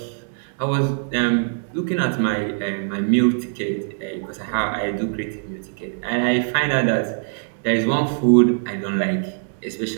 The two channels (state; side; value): silent; left; digital silence